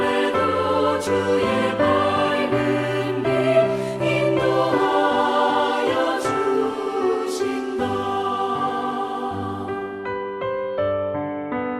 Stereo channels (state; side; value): identical; both; correlation 1.00